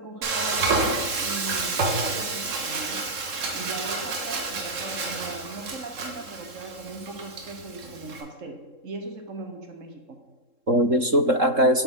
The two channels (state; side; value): late; left; 3.7 ms